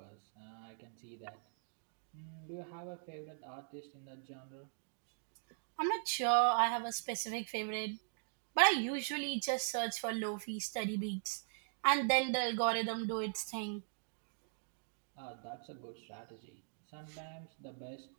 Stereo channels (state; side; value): silent; left; digital silence